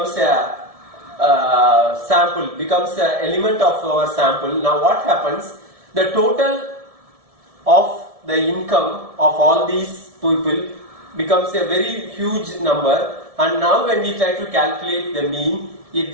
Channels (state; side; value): late; left; 1.7 ms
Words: a sample, becomes an element of our sample. Now what happens? The total of the income of all these people becomes a very huge number, and now when we try to calculate the mean, it